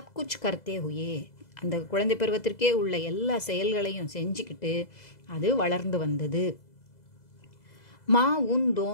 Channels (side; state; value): right; late; 2.0 ms